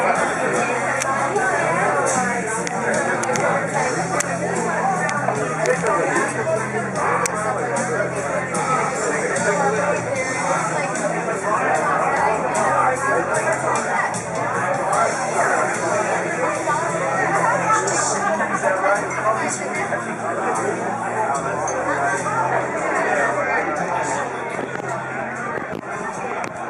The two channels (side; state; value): both; identical; correlation 1.00